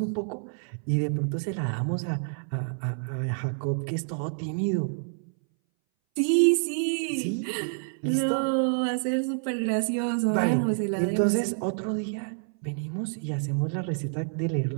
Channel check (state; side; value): silent; left; 59 dB below the other